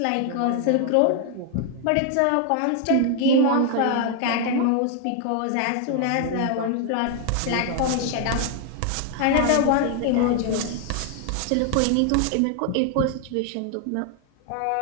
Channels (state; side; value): different; both; correlation 0.00